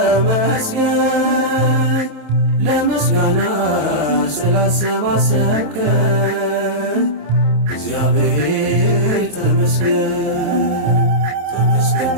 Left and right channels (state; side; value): late; left; 27 ms